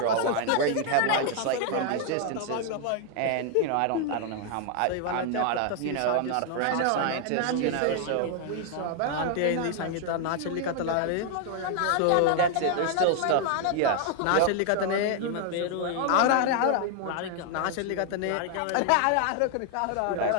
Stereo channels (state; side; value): different; both; correlation 0.00